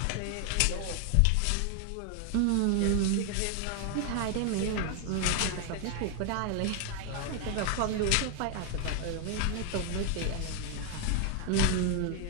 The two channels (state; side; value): different; both; correlation 0.01